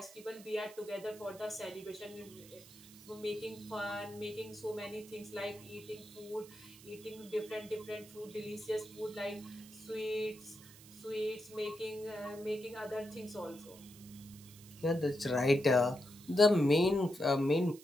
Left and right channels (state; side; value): noise; right; hiss, 20 dB below the sound